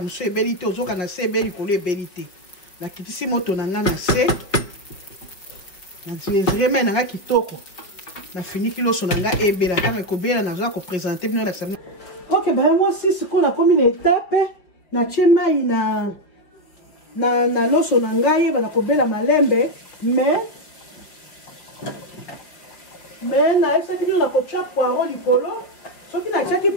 mosusu ebeli te ozoka na se ebeli likolo ebeli te nakitisi moto na ngai na se namesure mai na ngai kitoko nafiniki loso na ngai ebela ntango ekobela nazoka kopresente bino lakisa bino ok baya mwasi sikoyo nakomi na etape natie mai na loso na ngai yeba kobela malembe mais naesaki bino na kotia poireau likolo soki natiaki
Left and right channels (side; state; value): right; late; 5.2 ms